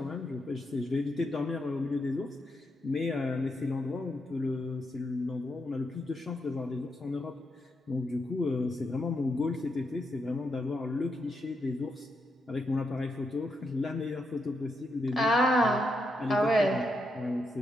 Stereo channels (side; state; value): both; normal; correlation 0.82